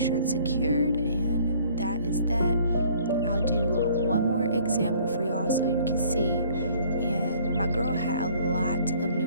it's secured. And that is that. I'll do one more example for y'all so you can see. And my girl had a lot of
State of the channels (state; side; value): inverted; both; correlation -0.57